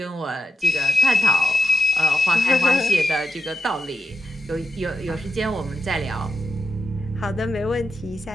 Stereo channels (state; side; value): normal; both; correlation 0.86